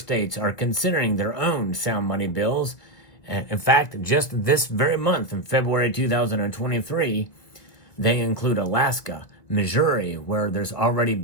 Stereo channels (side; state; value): right; late; 1.7 ms